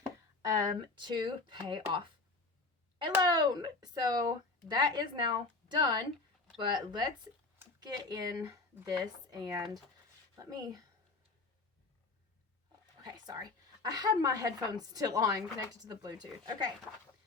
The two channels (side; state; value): right; quieter; 3.7 dB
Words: to pay off a loan. So that is now done, but let's get in this and okay, sorry. I had my headphones still on, connected to the Bluetooth. Okay,